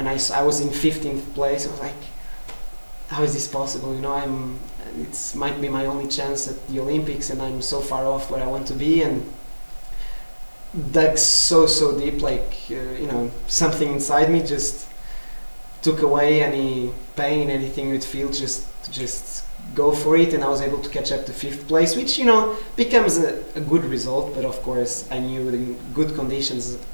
I was in 15th place, I was like, how is this possible? It might be my only chance at the Olympics, and I'm so far off where I want to be. And dug so deep, like something inside me just took away any pain, anything you'd feel, just go for it. And I was able to catch up to 5th place, which becomes a good result. But of course, I knew in good conditions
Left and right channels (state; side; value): inverted; both; correlation -1.00